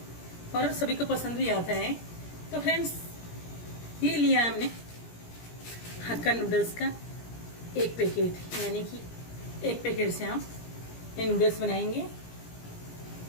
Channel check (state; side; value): late; right; 17 ms